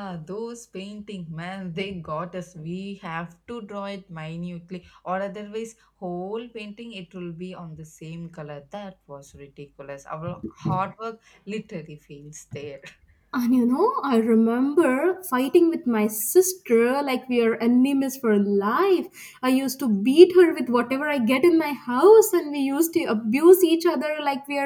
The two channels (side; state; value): both; identical; correlation 1.00